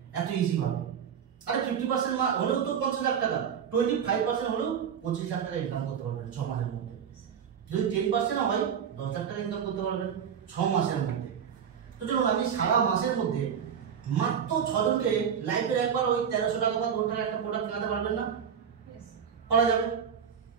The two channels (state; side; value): quieter; left; 7.8 dB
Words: এত ইজি ভাবে। আরে 50% হলেও তো 50 লাখ টাকা, 25% হলেও 25 লাখ টাকা ইনকাম করতে পারবেন 6 মাসের মধ্যে। যদি 10% হয় 10 লাখ টাকা ইনকাম করতে পারবেন 6 মাসের মধ্যে। তো চলুন, আপনি সারা মাসের মধ্যে মাত্র 6 জনকে লাইফের একবার ওই 1300 টাকা বা 2 টাকা একটা প্রোডাক্ট কেনাতে পারবেন না? করা যাবে।